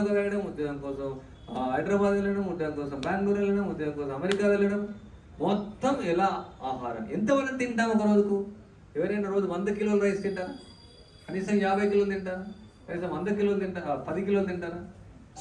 వెళ్ళడం, ఉద్యోగం కోసం హైదరాబాద్ వెళ్ళడం, ఉద్యోగం కోసం బెంగళూరు వెళ్ళడం, ఉద్యోగం కోసం అమెరికా వెళ్ళడం. మొత్తం ఎలా ఆహారం ఎంతవరకు తింటాం ఒక రోజుకు? ఎవరైనా రోజు 100 కిలోల రైస్ తింటారా? కనీసం 50 కిలోలు తింటారా? కనీసం 100 కిలోలు తింటారా? 10 కిలోలు తింటారా?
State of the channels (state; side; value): identical; both; correlation 1.00